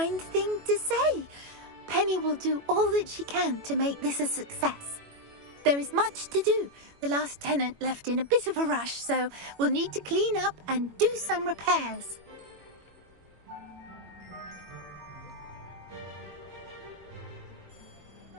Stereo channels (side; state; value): left; late; 21 ms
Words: thing to say. Penny will do all that she can to make this a success. There is much to do. The last tenant left in a bit of a rush, so we'll need to clean up and do some repairs.